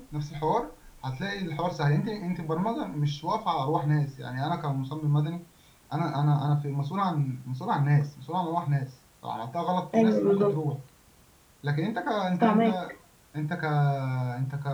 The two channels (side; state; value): both; identical; correlation 1.00